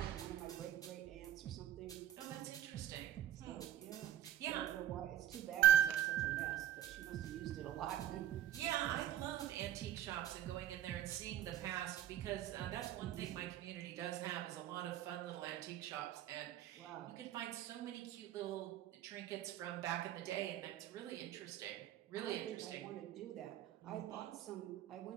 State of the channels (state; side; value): quieter; left; 12.0 dB